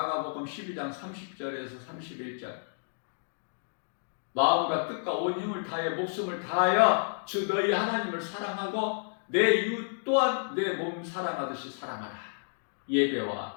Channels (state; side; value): silent; right; digital silence